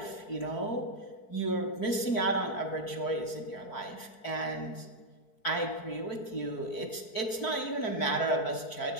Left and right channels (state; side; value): late; right; 4.6 ms